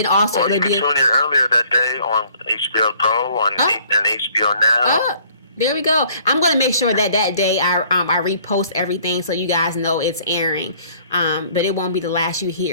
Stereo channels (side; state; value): both; inverted; correlation -0.58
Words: also, you can tune in earlier that day on HBO Go and HBO Now. There we go. I'm going to make sure that day I repost everything so you guys know it's airing. But it won't be the last you